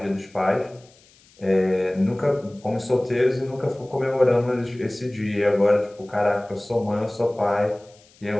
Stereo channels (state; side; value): noise; left; hiss, 29 dB below the sound